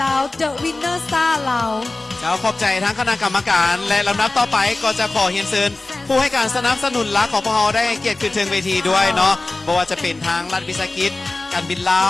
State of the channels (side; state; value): right; quieter; 3.1 dB